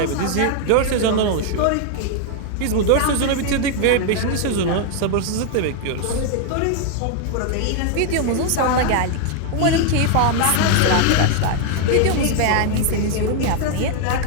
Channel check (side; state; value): both; different; correlation 0.00